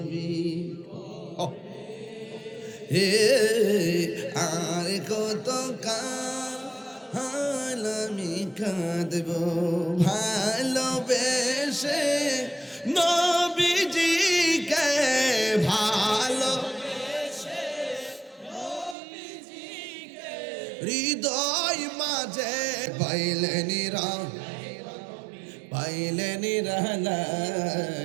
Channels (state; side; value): drops out; left; at 18.9 s